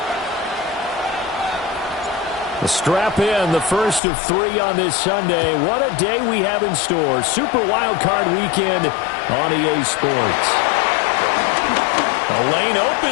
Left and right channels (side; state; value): right; drops out; at 4.0 s